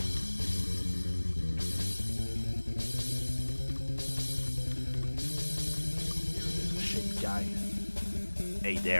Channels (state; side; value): inverted; both; correlation -1.00